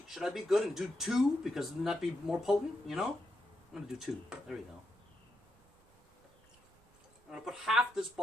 be good and do 2 because then that'd be more potent, you know? I'm going to do 2. There we go. I'm going to put half this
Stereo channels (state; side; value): noise; right; rumble, 29 dB below the sound